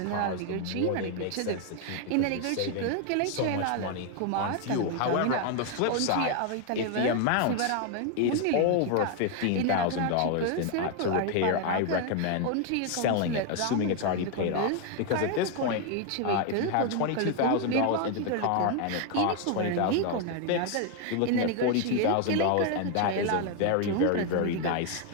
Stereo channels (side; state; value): both; different; correlation 0.01